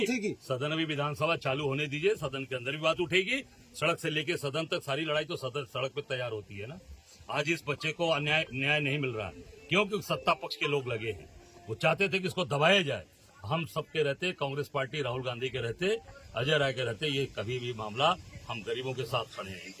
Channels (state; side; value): identical; both; correlation 1.00